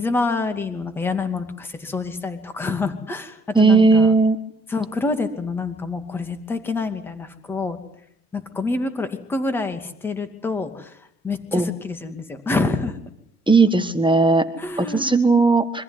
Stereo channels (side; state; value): both; normal; correlation 0.67